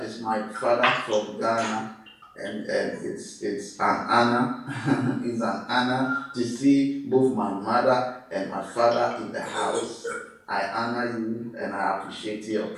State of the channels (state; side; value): identical; both; correlation 1.00